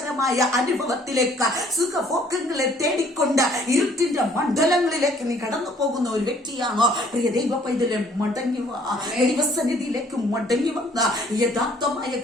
അനുഭവത്തിലേക്ക് സുഖഭോഗങ്ങളെ തേടിക്കൊണ്ട് ഇരുട്ടിന്റെ മണ്ഡലങ്ങളിലേക്ക് നീ കടന്നു പോകുന്ന ഒരു വ്യക്തിയാണോ? പ്രിയ ദൈവ പൈതലെ, മടങ്ങി വാ, ദൈവസന്നിധിയിലേക്ക് മടങ്ങി വന്ന യഥാർത്ഥമായ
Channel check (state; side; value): normal; both; correlation 0.60